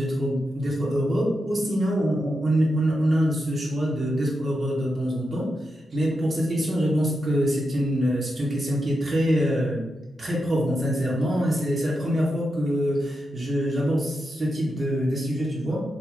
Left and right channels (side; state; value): both; normal; correlation 0.87